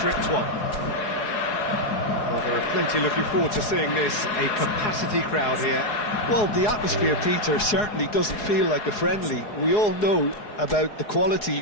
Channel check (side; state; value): right; late; 4.8 ms